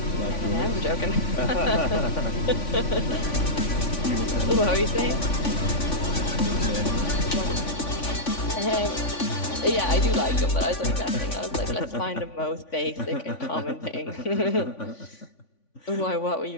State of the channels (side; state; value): right; late; 3.5 ms